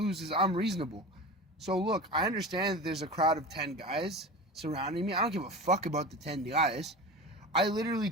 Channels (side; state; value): both; normal; correlation 0.31